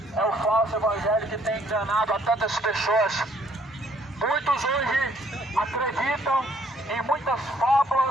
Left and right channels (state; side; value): normal; both; correlation 0.63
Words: é o falso evangelho que tem enganado a tantas pessoas. Muitos hoje acreditam em muitas